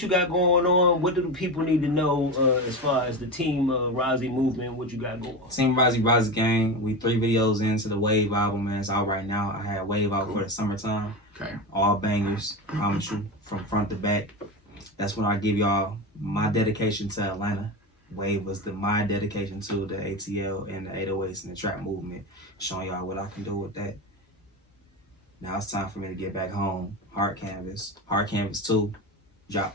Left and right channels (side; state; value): both; normal; correlation 0.21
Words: you got going on? What do the people need to know as far as the Team Rozzy movement? What you got going on? Team Rozzy gang. We 3 videos into the Wave album, man. It's out right now. I had Wave out for the summertime. Okay. All bangers, promise you, from front to back. That's when I give y'all my dedication to Atlanta. Wave was my dedication to the ATL and the 808s and the trap movement, showing y'all what I can do with that. Now it's time for me to get back home. Hard Canvas 2